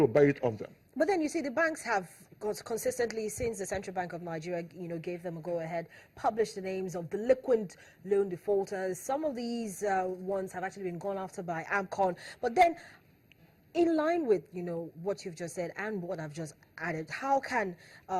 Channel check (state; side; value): identical; both; correlation 1.00